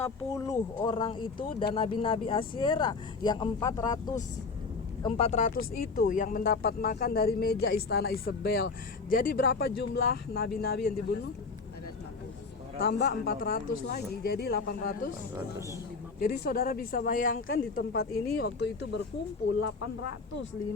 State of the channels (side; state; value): right; quieter; 4.4 dB